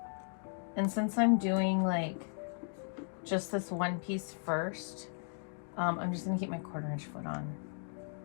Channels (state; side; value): silent; right; 54 dB below the other